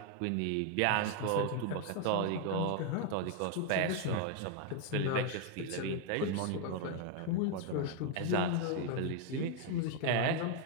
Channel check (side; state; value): both; different; correlation 0.01